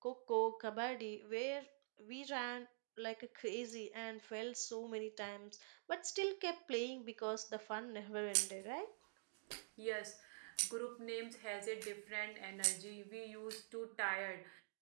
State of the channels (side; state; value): left; silent; digital silence